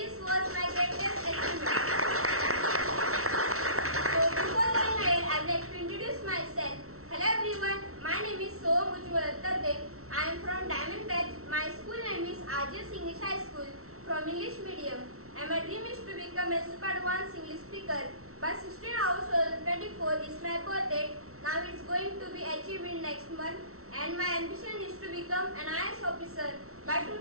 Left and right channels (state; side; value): late; left; 0.63 ms